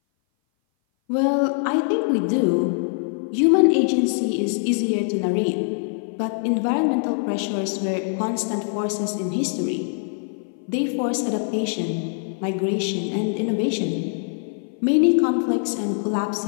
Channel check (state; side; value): silent; right; 58 dB below the other